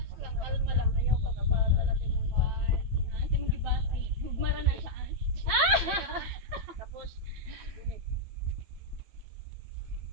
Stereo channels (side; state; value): left; late; 8.8 ms